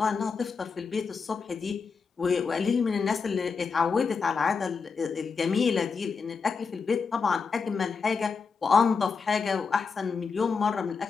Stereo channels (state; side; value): quieter; right; 5.2 dB